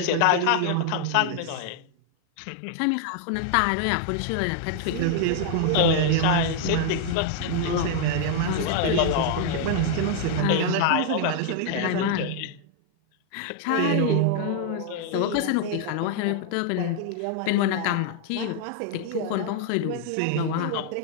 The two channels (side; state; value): both; different; correlation 0.00